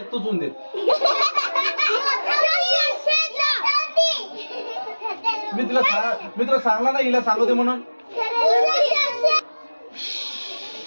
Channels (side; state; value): both; inverted; correlation -1.00